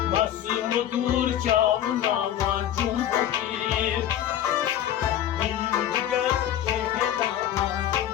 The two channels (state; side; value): quieter; right; 11.1 dB